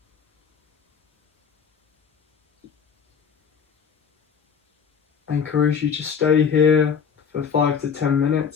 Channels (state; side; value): quieter; right; 6.7 dB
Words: I encourage you to stay here for 5 to 10